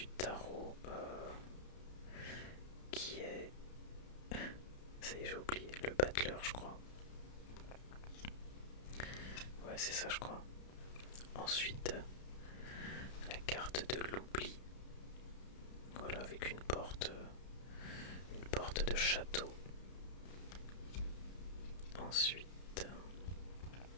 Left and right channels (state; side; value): late; right; 32 ms